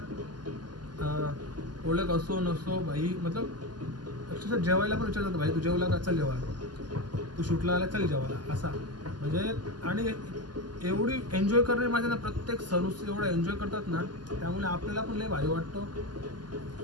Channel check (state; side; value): late; left; 0.70 ms